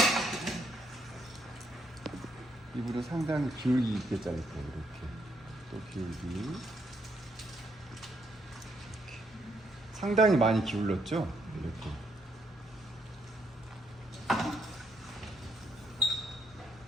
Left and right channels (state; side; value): normal; both; correlation 0.74